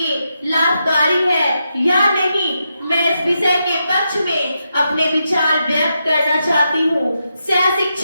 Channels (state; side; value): inverted; both; correlation -0.85